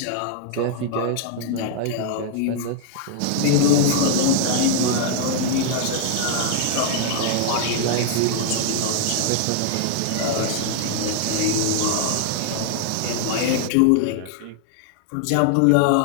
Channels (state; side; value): different; both; correlation 0.00